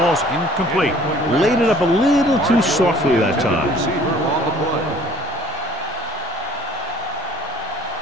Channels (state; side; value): normal; both; correlation 0.53